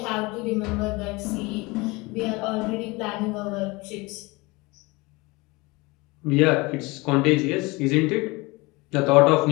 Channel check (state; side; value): quieter; right; 24.2 dB